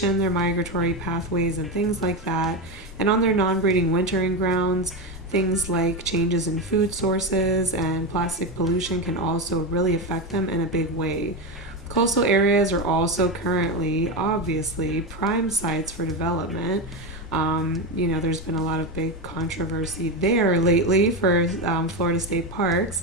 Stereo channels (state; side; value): normal; both; correlation 0.15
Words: their migratory pathways, and things like that. And on their non-breeding wintering grounds, things like changes in food sources and plastic pollution can also really affect them in a big way. Coastal areas are also currently, obviously, prime sites for development. There's been a lot of big controversy there lately for Florida state